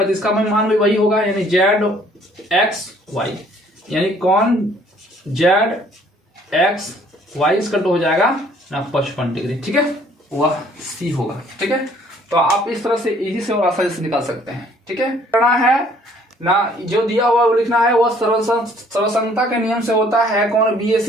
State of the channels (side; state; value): both; normal; correlation 0.60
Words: तो इसका मान भी वही होगा, यानी ZXY, यानी कोण जेड एक्स वाई इसका हो जाएगा ना 55 डिग्री, ठीक है, वह सी होगा, ठीक है। तो आप इस तरह से इजी से और आसानी से निकाल सकते हैं, ठीक है। करना है ना, जो दिया हुआ वो लिखना है, वह सर्वसंगता के नियम से होता है कौन, B A